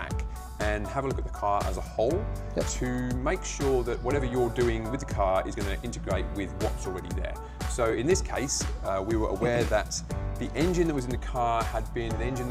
and have a look at the car as a whole to make sure that whatever you're doing with the car is going to integrate with what's already there. So in this case, we were aware that the engine that was in the car had been an engine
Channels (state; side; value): identical; both; correlation 1.00